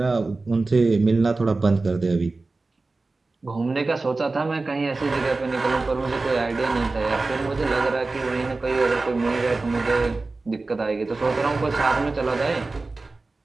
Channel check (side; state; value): left; quieter; 3.5 dB